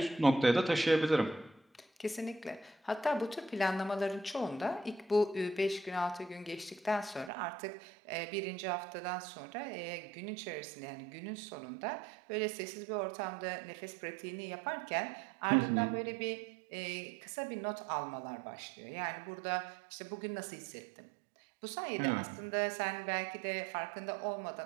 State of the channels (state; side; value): drops out; left; at 7.3 s